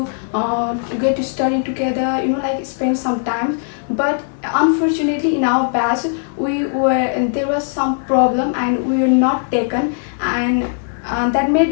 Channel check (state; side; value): silent; right; digital silence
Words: study together, like spend some time. But unfortunately in our batch there was some problem and we were not taken. And that